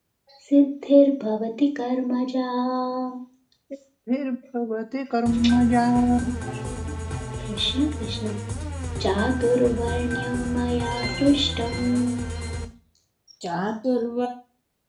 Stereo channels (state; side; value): identical; both; correlation 1.00